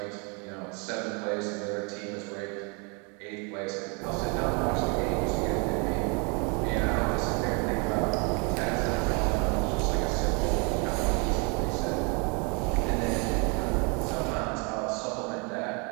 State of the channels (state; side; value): quieter; left; 33.3 dB